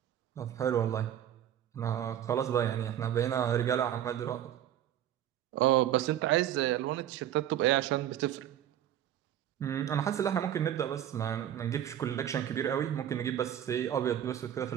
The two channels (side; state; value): left; quieter; 10.9 dB